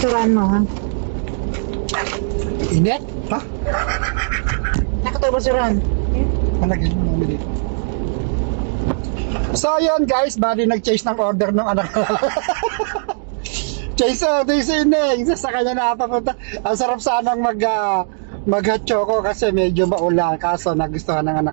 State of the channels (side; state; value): left; silent; digital silence